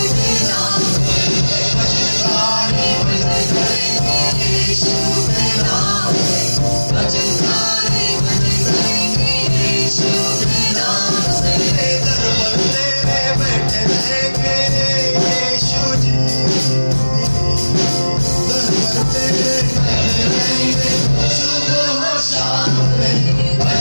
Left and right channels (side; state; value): both; inverted; correlation -1.00